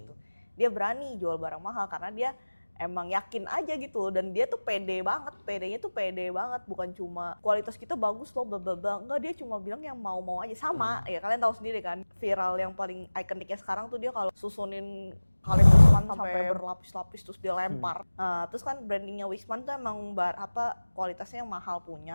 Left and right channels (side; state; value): both; inverted; correlation -1.00